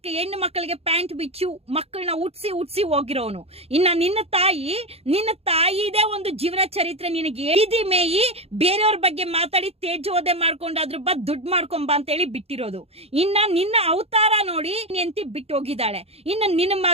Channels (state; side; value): late; left; 0.29 ms